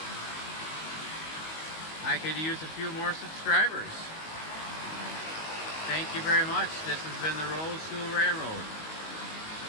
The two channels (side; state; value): right; late; 19 ms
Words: I could use a few more subscribers. Thank you very much. This has been the Rolls Jewel Railroad.